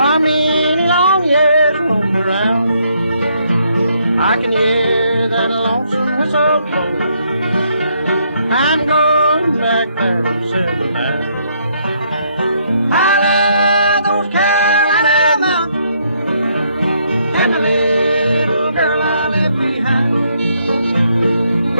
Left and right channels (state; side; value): inverted; both; correlation -0.72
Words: many long years roam around, I can hear that lonesome whistle blow. I'm going back there to settle down. I love those Carolina mountains and the little girl I left behind.